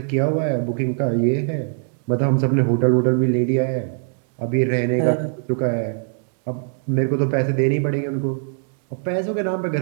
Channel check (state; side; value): silent; left; digital silence